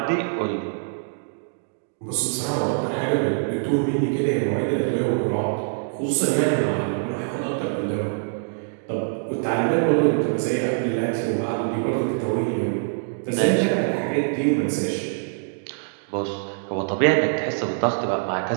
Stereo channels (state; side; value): silent; left; digital silence